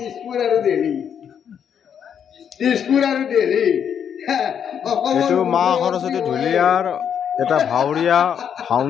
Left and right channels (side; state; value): right; quieter; 8.2 dB